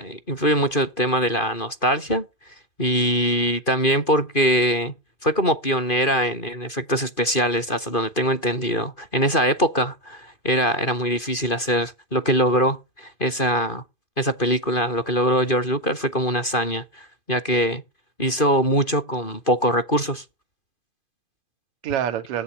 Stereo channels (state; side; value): late; right; 2.5 ms